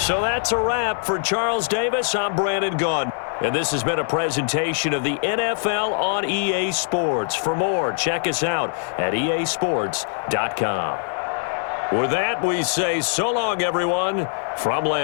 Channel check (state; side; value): silent; right; digital silence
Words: that's a wrap for Charles Davis. I'm Brandon Gaudin. And this has been a presentation of the NFL on EA Sports. For more, check us out at easports.com. With that, we say so long, everyone, from